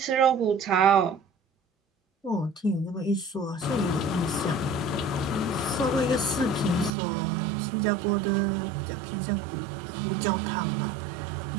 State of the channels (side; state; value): left; drops out; at 6.9 s